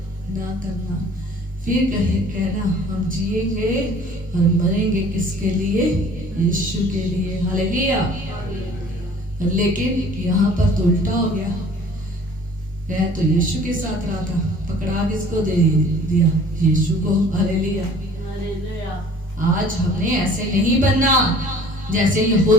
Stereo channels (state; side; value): normal; both; correlation 0.50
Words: ना करना। फिर कहना हम जिएंगे और मरेंगे किसके लिए? यीशु के लिए। हालेलुया। लेकिन यहाँ पर तो उल्टा हो गया, वह तो यीशु के साथ रहा था, पकड़ा किसको दे दिया? यीशु को। हालेलुया। आज हमने ऐसे नहीं बनना जैसे